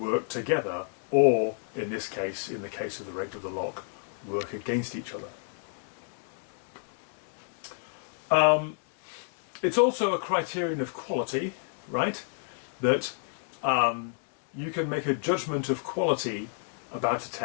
together, or in this case, in the case of the rape of the lock, work against each other. It's also a criterion of quality, right? That you can make a judgment of quality about a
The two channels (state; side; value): silent; right; digital silence